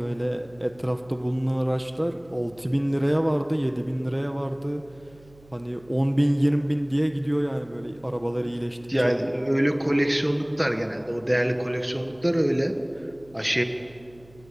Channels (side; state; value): right; noise; hum, 26 dB below the sound